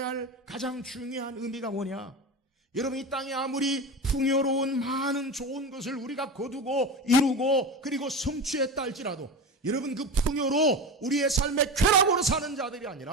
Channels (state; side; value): normal; both; correlation 0.26